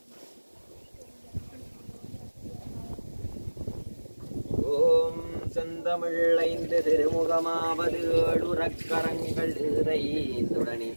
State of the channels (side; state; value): both; inverted; correlation -1.00